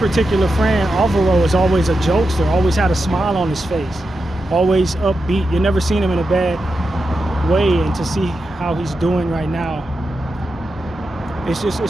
friend, Alvaro, is always a jokester, always had a smile on his face, always upbeat. You never seen him in a bad way, and to see how he's doing right now, it's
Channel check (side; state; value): both; normal; correlation 0.88